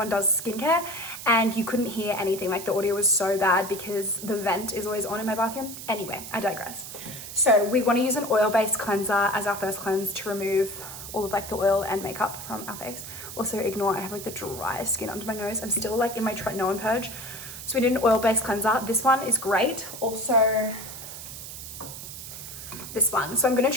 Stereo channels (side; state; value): right; noise; hiss, 11 dB below the sound